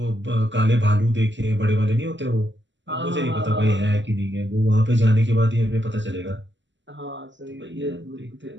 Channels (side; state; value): left; late; 0.54 ms